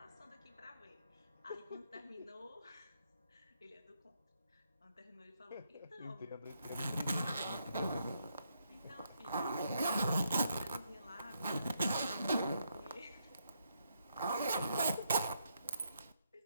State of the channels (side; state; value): both; inverted; correlation -0.78